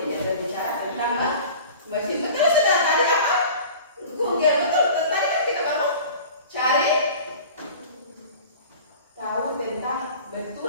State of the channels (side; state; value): both; inverted; correlation -0.41